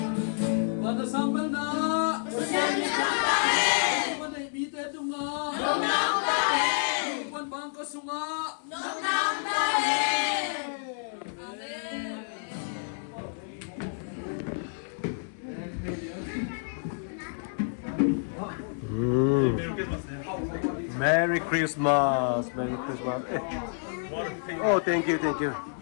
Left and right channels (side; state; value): right; silent; digital silence